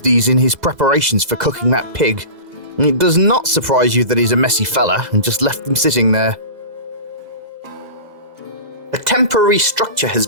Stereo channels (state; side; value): late; left; 2.0 ms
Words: these in his preparations for cooking that pig. It does not surprise you that he's a messy fella and just left them sitting there. A temporary structure